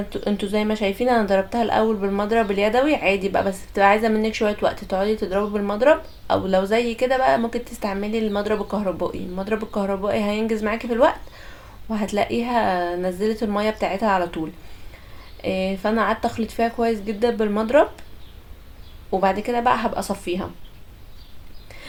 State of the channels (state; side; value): identical; both; correlation 1.00